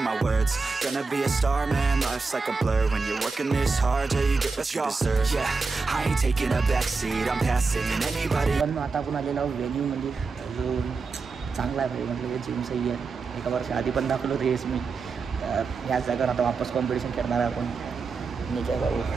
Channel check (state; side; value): quieter; left; 4.5 dB